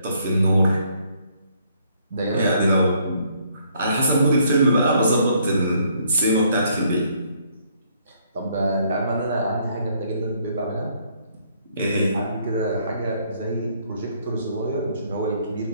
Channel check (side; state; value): both; inverted; correlation -0.67